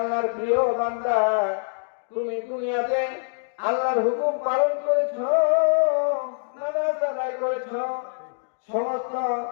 প্রিয় বান্দা, তুমি দুনিয়াতে আল্লাহর হুকুম পালন করেছো, নামাজ আদায় করেছো, সমস্ত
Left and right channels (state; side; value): silent; right; digital silence